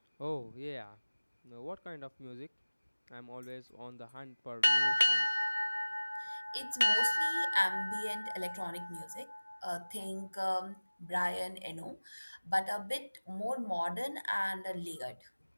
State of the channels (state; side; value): inverted; both; correlation -1.00